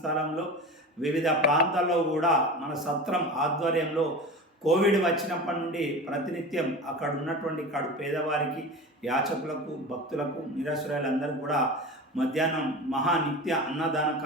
వివిధ ప్రాంతాల్లో కూడా మన సత్రం ఆధ్వర్యంలో కోవిడ్ వచ్చినప్పటి నుండి ప్రతినిత్యం అక్కడ ఉన్నటువంటి పేదవారికి, యాచకులకు, భక్తులకు, నిరాశ్రయులందరూ కూడా మధ్యాహ్నం మహానిత్య అన్నదాన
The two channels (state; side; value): normal; both; correlation 0.31